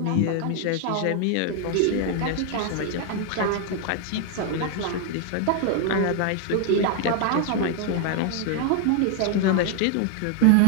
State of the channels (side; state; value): both; different; correlation 0.00